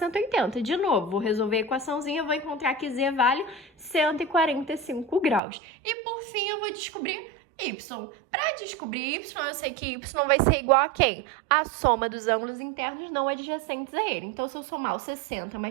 De novo, vou resolver a equaçãozinha, vou encontrar que Z vale 145 graus. E, por fim, eu vou descobrir Y. Para descobrir Y, eu sei que Y vai ser igual a quem? A soma dos ângulos internos não adjacentes a ele. Então, se eu somar o 60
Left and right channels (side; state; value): left; drops out; at 5.4 s